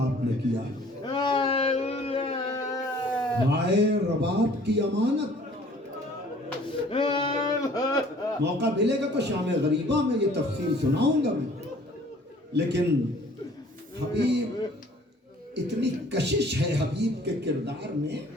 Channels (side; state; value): both; normal; correlation 0.54